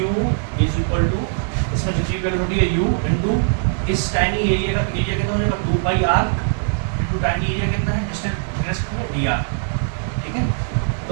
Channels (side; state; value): left; silent; digital silence